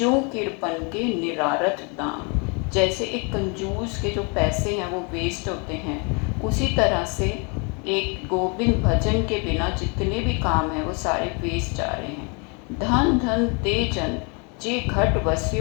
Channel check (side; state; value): right; quieter; 33.8 dB